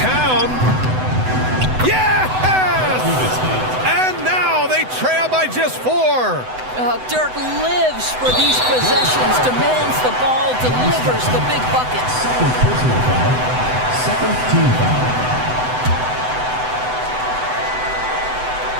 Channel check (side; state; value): left; late; 7.9 ms